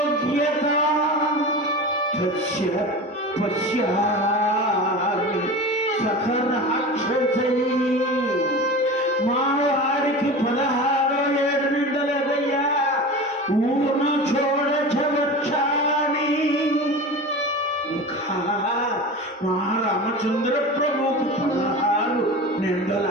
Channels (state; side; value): normal; both; correlation 0.31